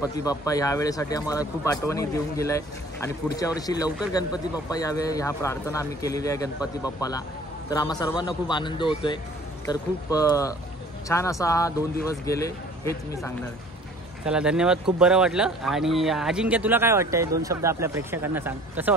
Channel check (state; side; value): normal; both; correlation 0.50